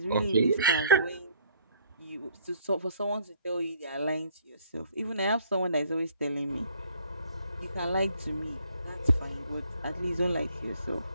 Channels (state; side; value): inverted; both; correlation -0.62